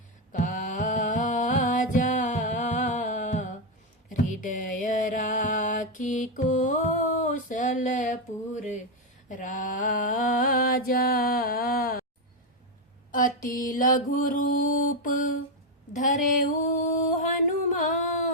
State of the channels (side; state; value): both; normal; correlation 0.04